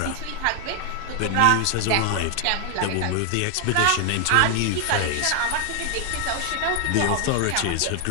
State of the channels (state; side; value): different; both; correlation 0.00